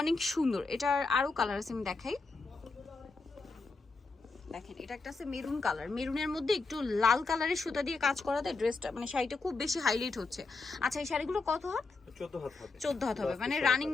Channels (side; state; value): right; quieter; 3.9 dB